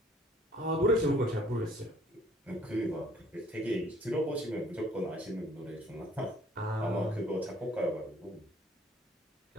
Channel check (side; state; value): both; normal; correlation 0.57